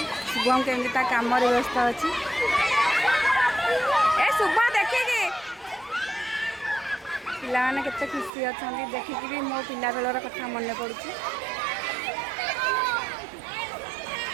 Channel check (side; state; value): left; drops out; at 8.3 s